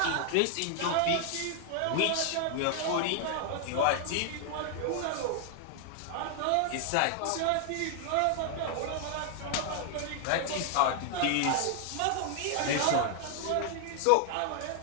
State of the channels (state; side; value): different; both; correlation 0.00